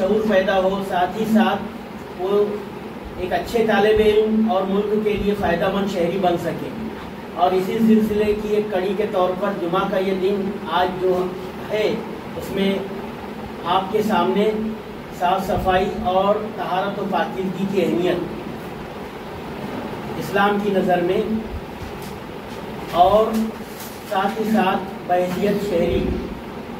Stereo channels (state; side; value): identical; both; correlation 1.00